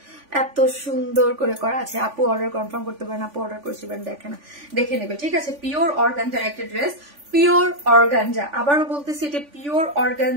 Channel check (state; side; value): late; left; 3.5 ms